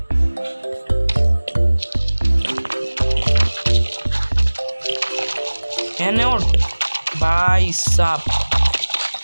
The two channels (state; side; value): inverted; both; correlation -1.00